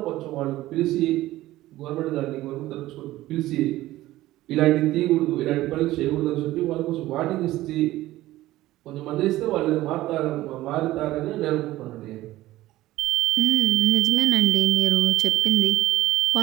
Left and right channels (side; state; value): left; quieter; 16.2 dB